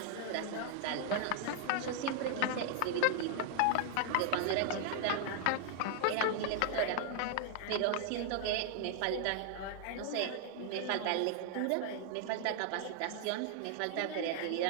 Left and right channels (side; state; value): both; different; correlation 0.00